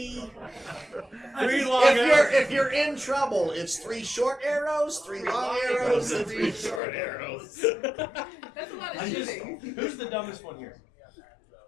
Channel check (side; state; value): right; drops out; at 6.8 s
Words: 3 long arrows. If you're in trouble, it's 3 short arrows, 3 long arrows, and 3 short arrows. That's a lot of I just, shooting. who's the dumbest one here?